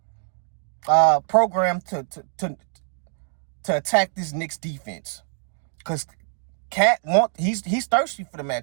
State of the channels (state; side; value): silent; left; digital silence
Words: program to attack this Knicks defense, because Cat he's thirsty for the